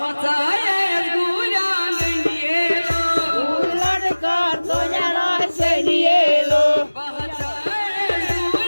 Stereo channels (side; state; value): both; inverted; correlation -1.00